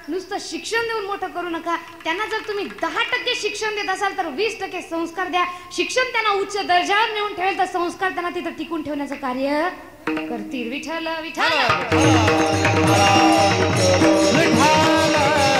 नुसतं शिक्षण देऊन मोठं करू नका. त्यांना जर तुम्ही 10% शिक्षण देत असाल तर 20% संस्कार द्या. शिक्षण त्यांना उच्च दर्जावर नेऊन ठेवेल तर संस्कार त्यांना तिथं टिकून ठेवण्याचं कार्य करतील. विठ्ठल विठ्ठल.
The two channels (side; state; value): both; identical; correlation 1.00